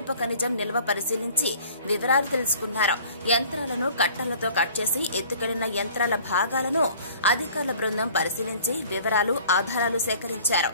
ఖనిజం నిల్వ పరిశీలించి వివరాలు తెలుసుకున్నారు. యంత్రాలను కట్టలతో కట్ చేసి ఎత్తుకెళ్లిన యంత్రాల భాగాలను అధికారుల బృందం పరిశీలించి వివరాలు, ఆధారాలు సేకరించారు.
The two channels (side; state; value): both; inverted; correlation -0.50